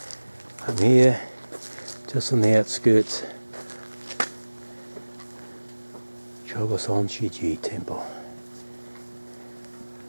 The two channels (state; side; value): inverted; both; correlation -1.00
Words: I'm here, just on the outskirts, Ikoma-sanke Temple.